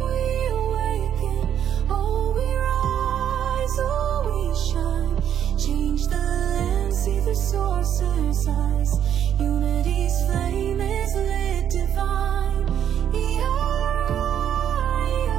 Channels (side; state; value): left; quieter; 9.5 dB